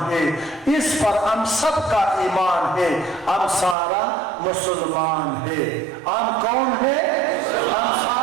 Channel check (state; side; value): drops out; left; at 3.8 s